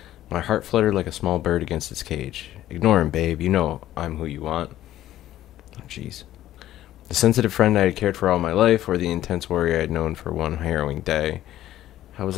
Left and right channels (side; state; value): right; quieter; 13.4 dB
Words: my heart fluttered like a small bird against its cage. Ignore him, babe. You know I'm who you want. Oh, jeez. The sensitive friend I had cared for all my life, or the intense warrior I had known for one harrowing day. How